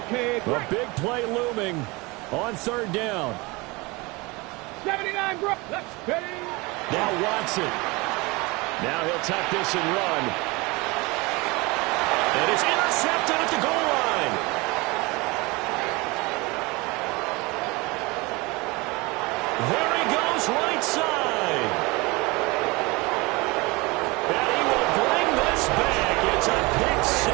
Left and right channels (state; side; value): quieter; left; 24.6 dB